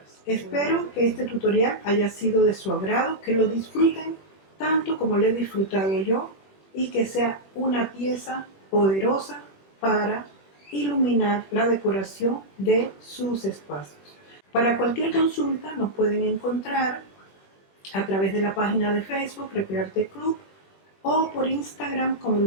Espero que este tutorial haya sido de su agrado, que lo disfruten tanto como lo he disfrutado yo y que sea una pieza poderosa para iluminar la decoración de sus espacios. Para cualquier consulta nos pueden encontrar a través de la página de Facebook Recrearte Club o por Instagram como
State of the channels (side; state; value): right; late; 21 ms